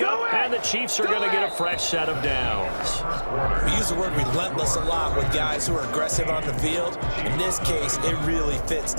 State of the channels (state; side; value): inverted; both; correlation -1.00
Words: and the Chiefs are going to get a fresh set of downs. We use the word relentless a lot with guys who are aggressive on the field. In this case, it really fits,